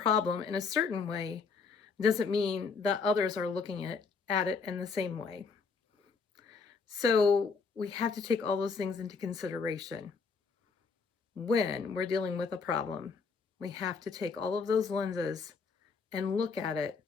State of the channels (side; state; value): right; quieter; 5.1 dB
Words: in a certain way doesn't mean that others are looking at it in the same way. So we have to take all those things into consideration when we're dealing with a problem. We have to take all of those lenses and look at it